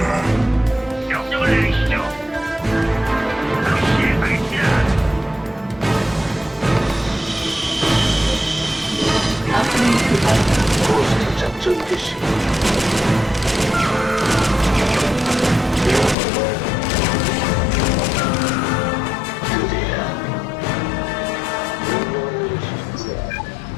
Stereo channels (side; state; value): right; drops out; at 16.2 s